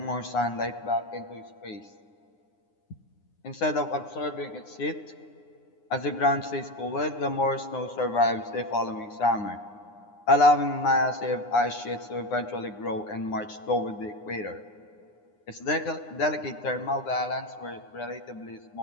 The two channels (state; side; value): late; right; 9.7 ms